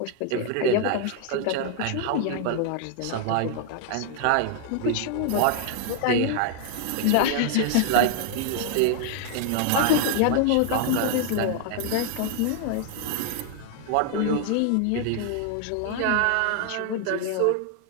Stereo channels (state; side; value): different; both; correlation 0.00